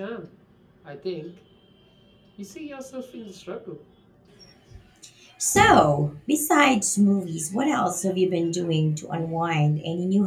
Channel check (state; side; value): identical; both; correlation 1.00